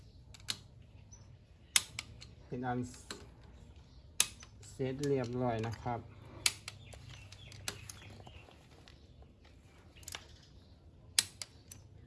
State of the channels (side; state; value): both; identical; correlation 1.00